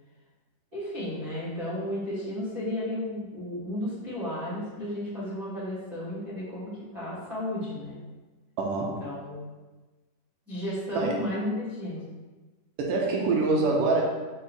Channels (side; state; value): left; late; 11 ms